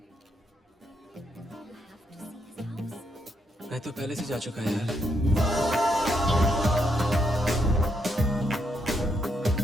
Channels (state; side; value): normal; both; correlation 0.78